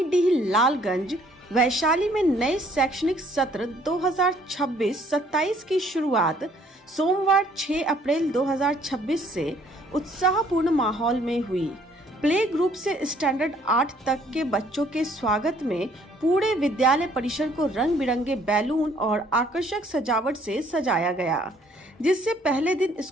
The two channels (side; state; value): both; normal; correlation 0.62